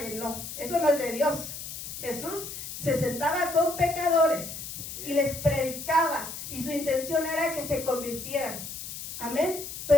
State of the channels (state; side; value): noise; left; hiss, 9 dB below the sound